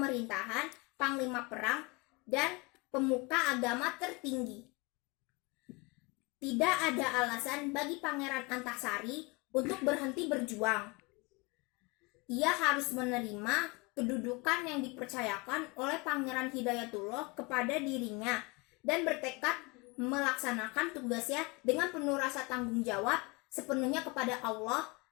panglima perang, dan pemuka agama tertinggi. Tidak ada alasan bagi Pangeran Antasari untuk berhenti berjuang. Ia harus menerima kedudukan yang dipercayakan oleh Pangeran Hidayatullah kepada dirinya dan bertekad melaksanakan tugasnya dengan penuh rasa tanggung jawab sepenuhnya kepada Allah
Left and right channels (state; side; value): quieter; right; 26.3 dB